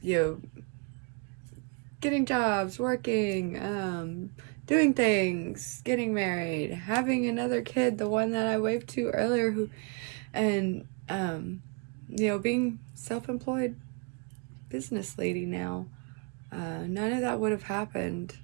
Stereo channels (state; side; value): quieter; left; 32.4 dB